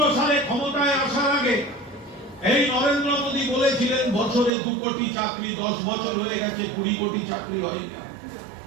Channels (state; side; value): drops out; left; at 4.5 s